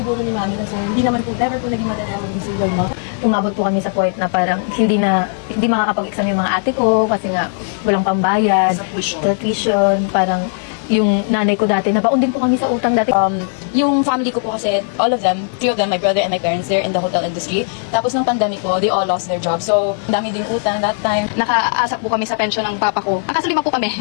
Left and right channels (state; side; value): silent; right; 55 dB below the other